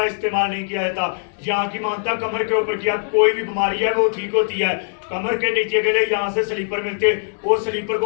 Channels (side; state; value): right; silent; digital silence